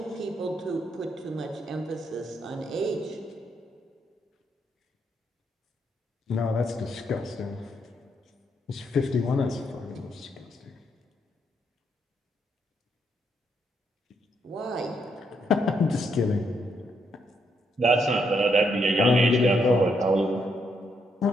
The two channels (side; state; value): both; normal; correlation 0.77